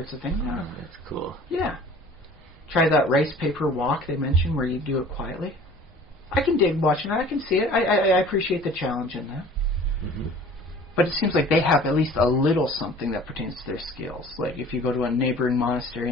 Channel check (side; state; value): both; normal; correlation 0.47